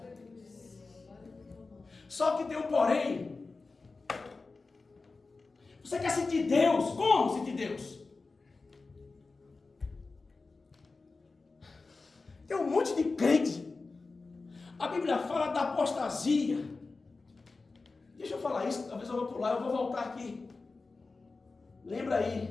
Só que tem um porém. Você quer sentir Deus? Como sentir Deus? Tem um monte de crente. A Bíblia fala da apostasia. Deixa eu falar isso, talvez eu vou pular, eu vou voltar aqui. Lembra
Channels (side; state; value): right; quieter; 3.9 dB